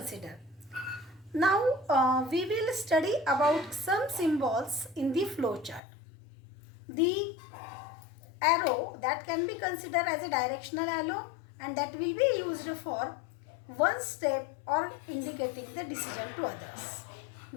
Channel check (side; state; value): right; drops out; at 5.8 s